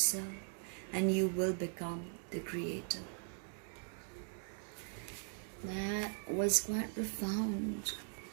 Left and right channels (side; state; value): left; silent; 51 dB below the other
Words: and you will become the creator. That was quite profound.